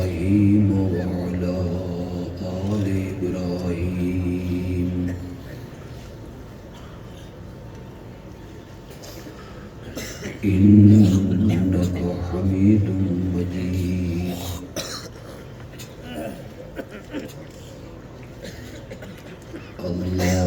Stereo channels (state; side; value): identical; both; correlation 1.00